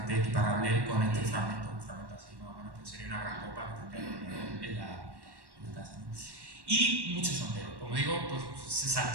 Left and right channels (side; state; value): left; late; 1.1 ms